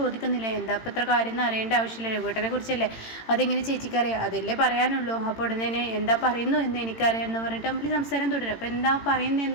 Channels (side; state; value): right; late; 18 ms